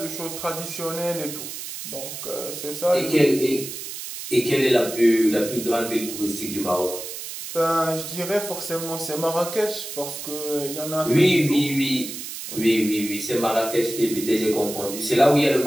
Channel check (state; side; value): noise; right; hiss, 9 dB below the sound